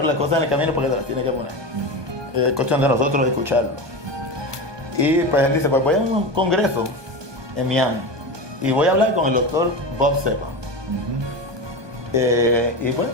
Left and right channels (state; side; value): late; left; 1.2 ms